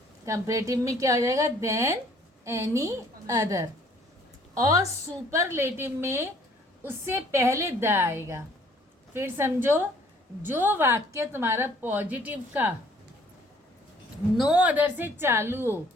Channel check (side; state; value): both; normal; correlation 0.59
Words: कंपैरेटिव में क्या हो जाएगा? Then any other. और सुपरलेटिव में उससे पहले द आएगा। फिर समझो, जो वाक्य तुम्हारा पॉजिटिव का नो अदर से चालू हो